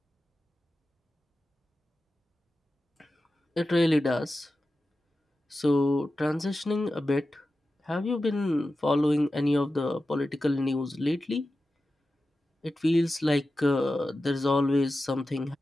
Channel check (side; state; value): both; normal; correlation 0.93